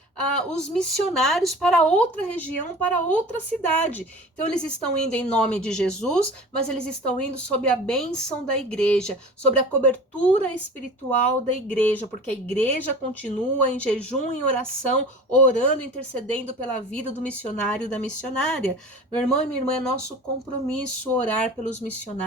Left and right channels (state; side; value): normal; both; correlation 0.39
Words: os missionários para outra região, para outra cidade. Então, eles estão indo em nome de Jesus, mas eles estão indo sob a bênção da igreja, sobre a cobertura espiritual da igreja, porque a igreja continua em jejum e oração, orando, intercedendo pela vida do missionário e da missionária. Meu irmão e minha irmã, é nosso compromisso orar pelos